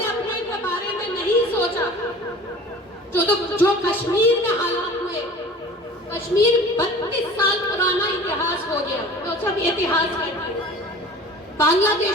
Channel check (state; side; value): normal; both; correlation 0.42